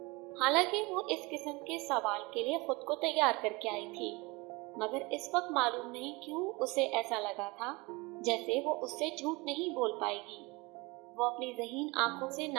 حالانکہ وہ اس قسم کے سوال کے لیے خود کو تیار کر کے آئی تھی، مگر اس وقت معلوم نہیں کیوں اسے ایسا لگا تھا جیسے وہ اس سے جھوٹ نہیں بول پائے گی۔ وہ اپنی ذہین آنکھوں سے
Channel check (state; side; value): quieter; left; 25.1 dB